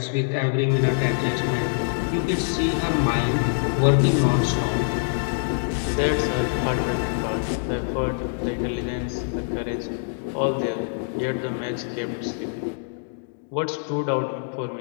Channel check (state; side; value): silent; right; digital silence